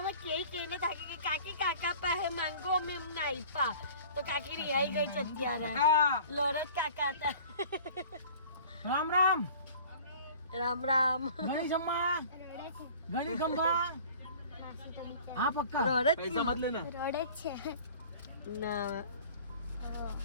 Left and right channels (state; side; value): inverted; both; correlation -0.46